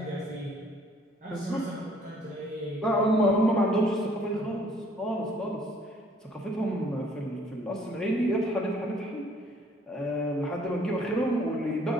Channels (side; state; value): both; normal; correlation 0.60